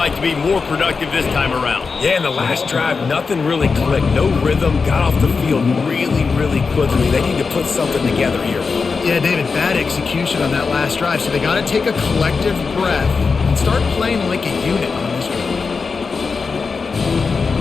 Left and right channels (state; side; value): quieter; right; 4.8 dB